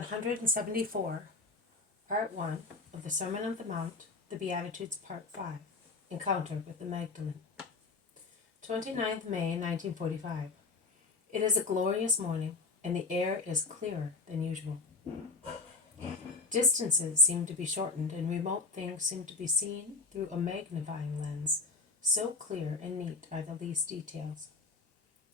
Part 1 of the Sermon on the Mount, the Beatitudes, Part 5, Encounter with the Magdalene. 29th May, 1945. It is a glorious morning, and the air is clearer than usual. Distances seem to be shortened, and remote things seem to be seen through a magnifying lens. So clear and neat are the least details.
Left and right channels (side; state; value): right; quieter; 3.9 dB